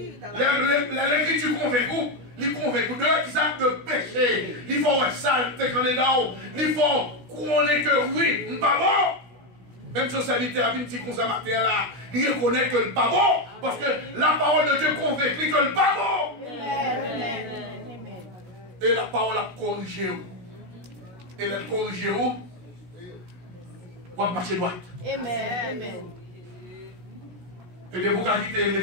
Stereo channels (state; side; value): late; left; 16 ms